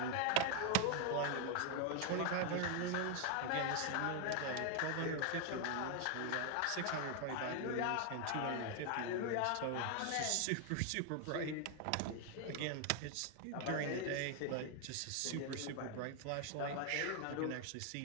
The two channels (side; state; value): both; different; correlation 0.01